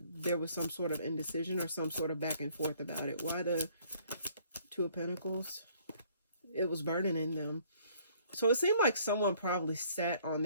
there was some sort of indecision or some sort of back and forth about it. Why the Two of Pentacles? It was burdening them. So it seemed like someone probably sat on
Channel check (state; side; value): inverted; both; correlation -0.60